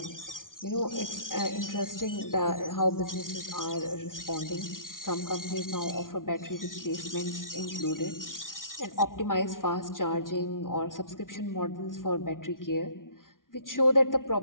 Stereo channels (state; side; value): late; right; 0.89 ms